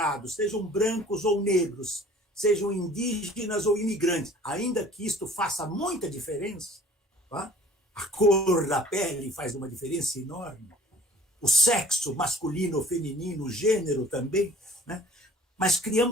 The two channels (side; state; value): both; normal; correlation 0.52